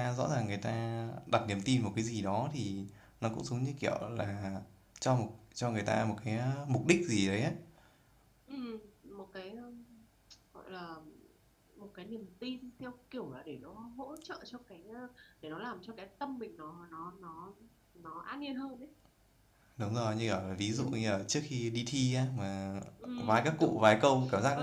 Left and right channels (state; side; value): identical; both; correlation 1.00